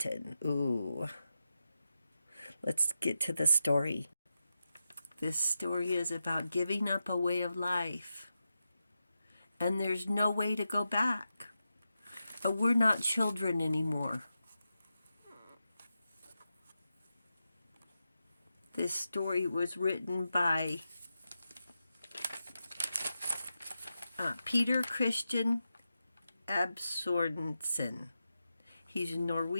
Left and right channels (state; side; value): inverted; both; correlation -0.89